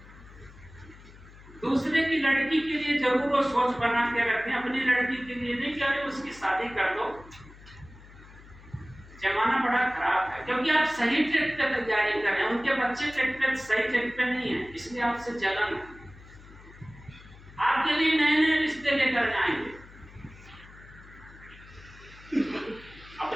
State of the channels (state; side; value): noise; left; hum, 21 dB below the sound